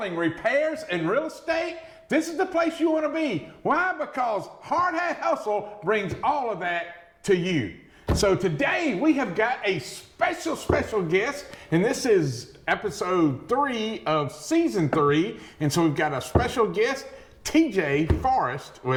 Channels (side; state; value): both; identical; correlation 1.00